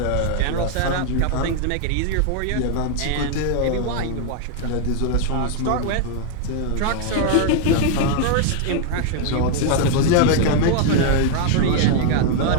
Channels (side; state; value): both; different; correlation 0.00